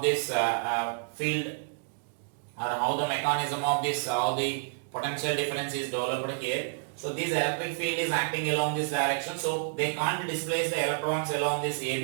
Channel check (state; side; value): silent; left; digital silence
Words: this field, or how the mechanism of this, how the potential difference is developed here. So this electric field is acting along this direction, so they can't displace the electrons along this